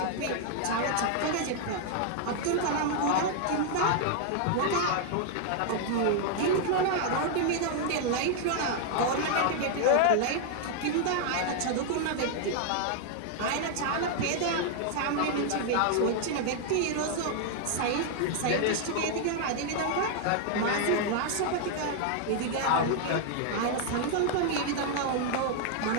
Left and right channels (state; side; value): different; both; correlation 0.00